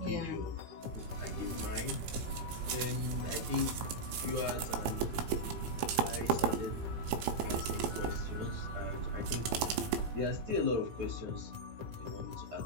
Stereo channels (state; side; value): late; left; 18 ms